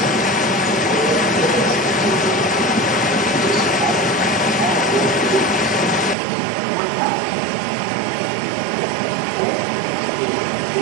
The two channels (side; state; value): left; drops out; at 6.2 s